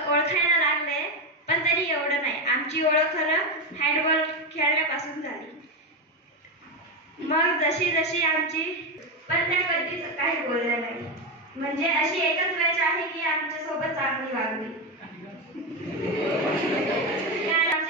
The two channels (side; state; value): both; normal; correlation 0.11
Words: ओळखायला लागले पण तरी एवढं नाही. आमची ओळख खरं हँडबॉल खेळण्यापासून झाली. मग जशी जशी आमची पण त्या कधीच काही बोलल्या नाही. म्हणजे अशी एकच वेळ आहे की आमच्या सोबत चांगली वागली.